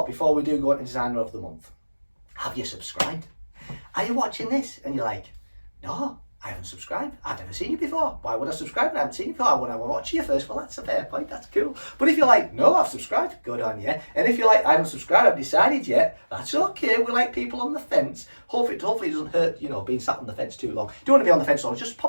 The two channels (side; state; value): both; inverted; correlation -1.00